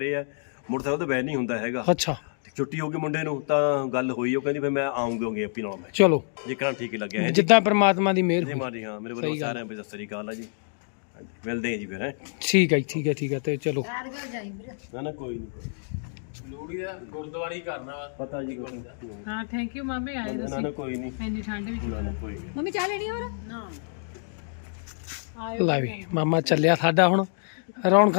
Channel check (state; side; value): silent; right; digital silence